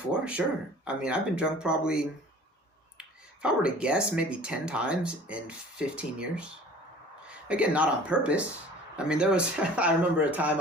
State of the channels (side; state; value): both; normal; correlation 0.46